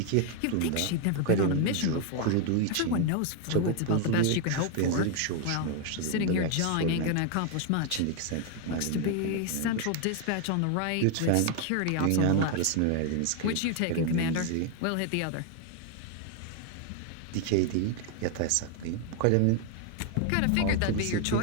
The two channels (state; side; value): different; both; correlation 0.01